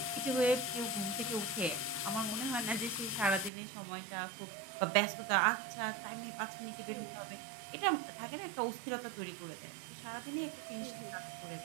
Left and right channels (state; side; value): drops out; left; at 3.5 s